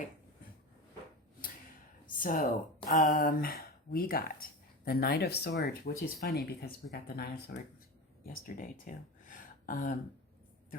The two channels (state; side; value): normal; both; correlation 0.25